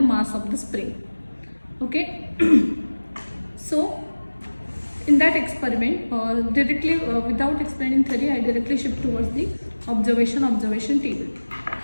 mass of the spring. Okay. So in that experiment, directly without explaining theory, I directly shift towards the observation table.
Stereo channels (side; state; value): both; inverted; correlation -1.00